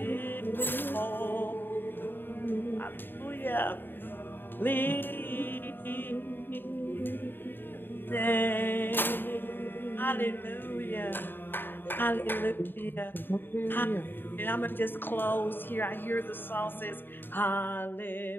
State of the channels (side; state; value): right; late; 0.096 ms